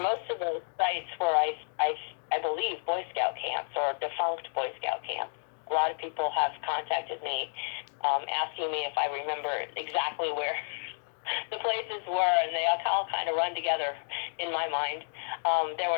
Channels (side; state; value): right; silent; digital silence